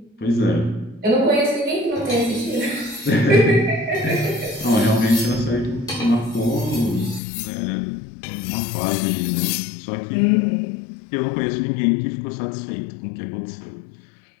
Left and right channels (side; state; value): right; drops out; at 7.2 s